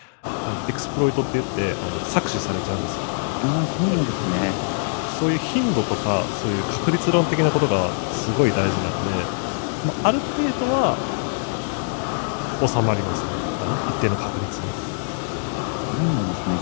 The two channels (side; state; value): right; silent; digital silence